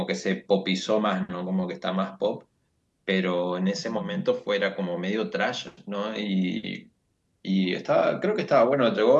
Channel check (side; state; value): both; identical; correlation 1.00